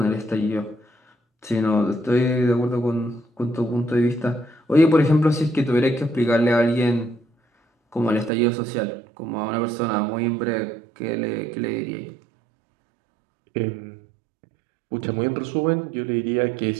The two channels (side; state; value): left; drops out; at 8.3 s